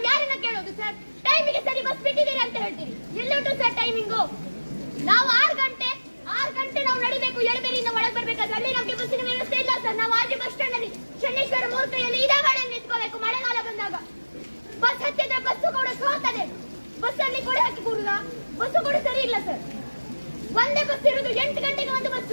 ಯಾರನ್ನ ಕೇಳೋದು ಸರ್? ಟೈಮಿಗೆ ಸರಿ ಬಸ್ ಬಿಟ್ಟಿದ್ದೀರಿ ಅಂತ ಹೇಳ್ತೀರಿ. ಎಲ್ಲುಂಟು ಸರ್ ಟೈಮಿಂಗು? ನಾವು 6 ಗಂಟೆ ನಾವು ನಡಿಬೇಕು, ಎಳಬೇರಿಯಿಂದ ಒಳಗೆ ಬರ್ಬೇಕಾದ್ರೆ ಅಲ್ಲಿ ನಮಗೆ ಬಸ್ಸಿನ ವ್ಯವಸ್ಥೆ ಇಲ್ಲ ಸರ್. ನಾವು ಆಜು ಬಸ್ ಸ್ಟ್ಯಾಂಡ್ ಅಲ್ಲಿ ಶನೇಶ್ವರ ಮೂರ್ತಿಯಲ್ಲಿ ಇದೇ ಗಾಡಿ ನಿಂತ್ಕೋಬೇಕು. ಮಳೆಗಾಲ ಬಂದಾಗ ಬಸ್ ಹತ್ತಿದ್ರೆ ಬಸ್ಸು ಕೂಡ ಸೋತದೆ. ಬಸ್ ಅಲ್ಲಿ ಕೊಡೆ ಹಾಕಿ ಕೂಡುದ, ಬಸ್ಸು ಕೂಡ ಸರಿ ಇಲ್ಲ ಸರ್. ಒಂದೇ ಬಸ್ ಇರುವುದು 8 ಗಂಟೆಗೆ ಒಂದು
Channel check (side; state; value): both; inverted; correlation -1.00